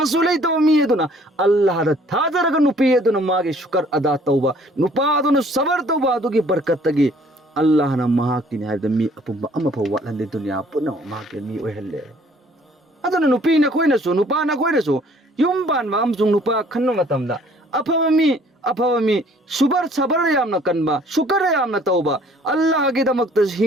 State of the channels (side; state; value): both; normal; correlation 0.58